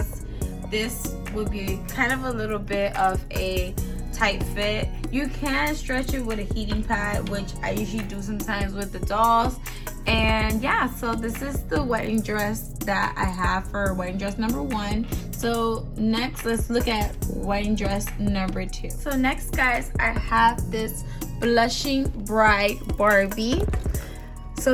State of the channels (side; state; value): both; identical; correlation 1.00